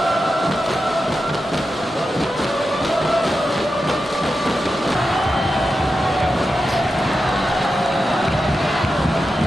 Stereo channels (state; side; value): normal; both; correlation 0.90